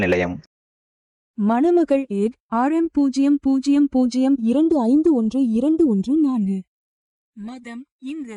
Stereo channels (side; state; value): both; identical; correlation 1.00